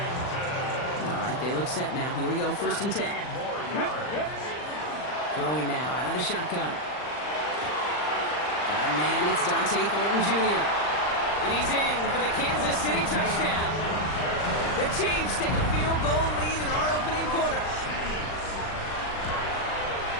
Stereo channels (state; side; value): late; right; 39 ms